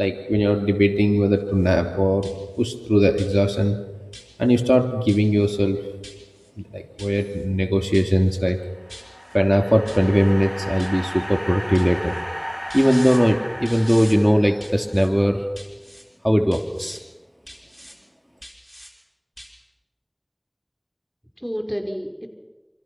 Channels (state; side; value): identical; both; correlation 1.00